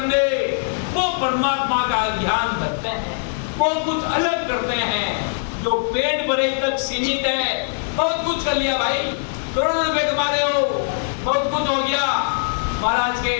वो परमात्मा का ध्यान रखते हैं, वो कुछ अलग करते हैं। जो पेट भरे तक सीमित है, बहुत कुछ कर लिया भाई, करोड़ों रुपए कमा रहे हो, बहुत कुछ हो गया। महाराज के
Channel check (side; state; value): right; silent; digital silence